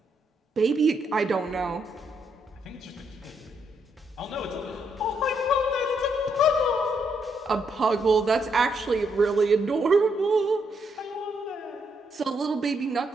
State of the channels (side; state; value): both; normal; correlation 0.76